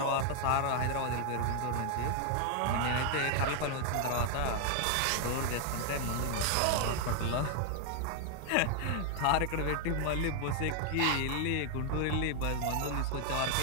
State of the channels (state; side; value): different; both; correlation 0.00